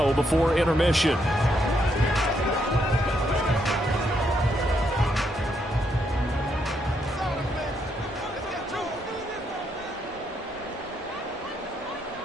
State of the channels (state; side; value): normal; both; correlation 0.76